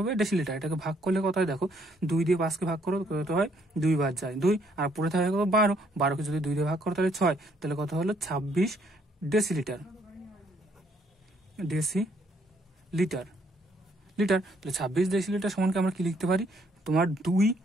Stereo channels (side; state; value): both; normal; correlation 0.68